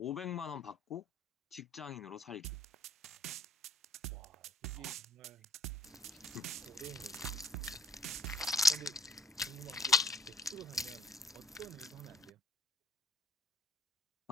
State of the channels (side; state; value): both; normal; correlation 0.53